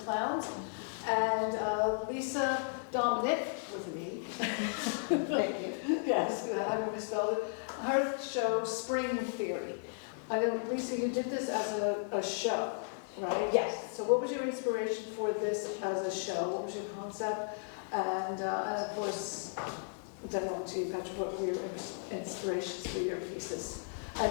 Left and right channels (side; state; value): right; silent; digital silence